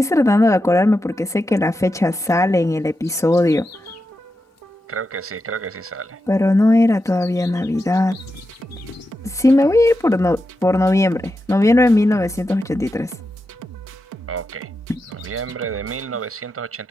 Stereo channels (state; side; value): normal; both; correlation 0.89